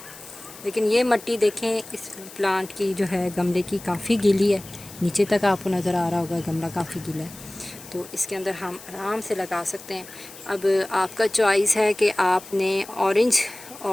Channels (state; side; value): noise; left; hiss, 17 dB below the sound